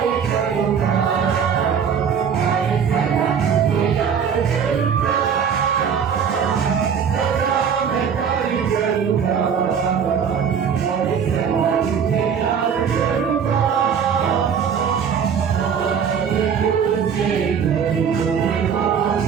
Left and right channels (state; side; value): quieter; left; 7.2 dB